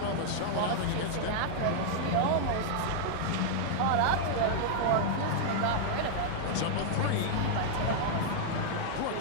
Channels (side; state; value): both; different; correlation -0.01